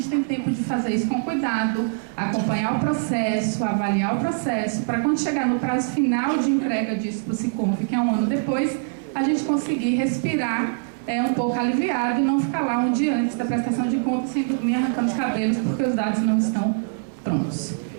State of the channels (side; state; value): left; silent; digital silence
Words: tem tempo de fazer isso com cuidado, acompanhar o processo, avaliar o processo, para quando chegar no prazo final de entrega disso para o SICONF, que é um ano depois, a gente conseguir respirar um pouco aliviado e não ficar lá um dia antes da prestação de contas sem dormir arrancando os cabelos porque os dados não estão prontos.